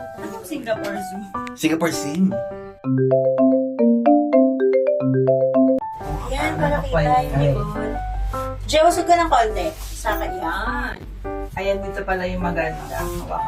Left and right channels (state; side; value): identical; both; correlation 1.00